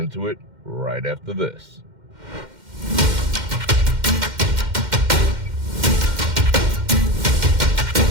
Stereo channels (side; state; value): left; late; 2.1 ms